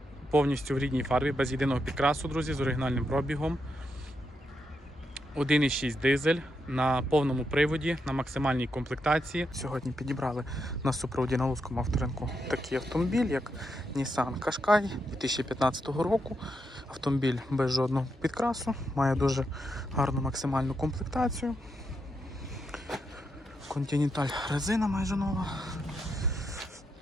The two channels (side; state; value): both; normal; correlation 0.82